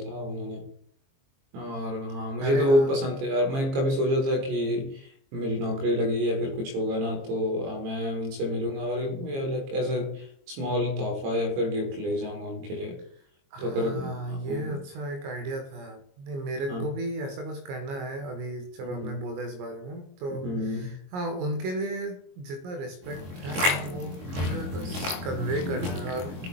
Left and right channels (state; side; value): late; left; 22 ms